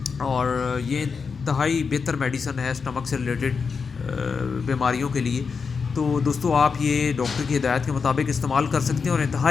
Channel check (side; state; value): right; quieter; 5.4 dB